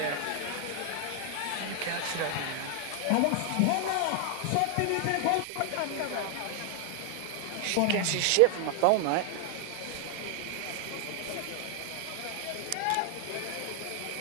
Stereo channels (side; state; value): both; different; correlation 0.00